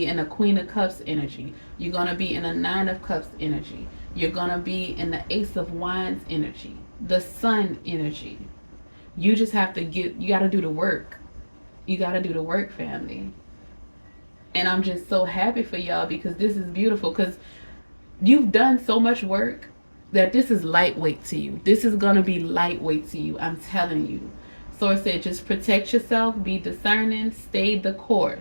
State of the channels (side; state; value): both; inverted; correlation -1.00